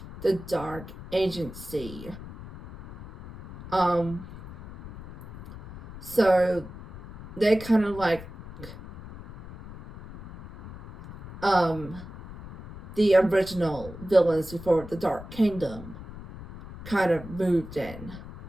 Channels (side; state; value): left; noise; rumble, 14 dB below the sound